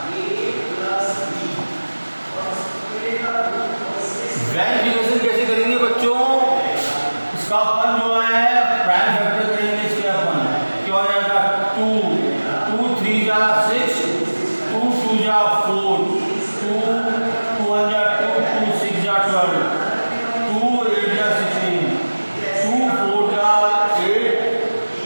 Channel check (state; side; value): inverted; both; correlation -1.00